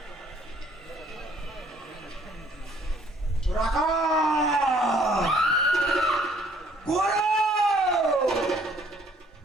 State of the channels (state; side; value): normal; both; correlation 0.61